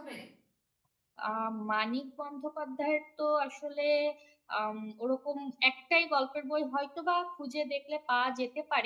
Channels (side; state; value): both; identical; correlation 1.00